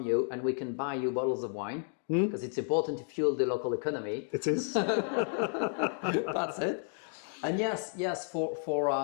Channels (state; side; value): silent; right; 56 dB below the other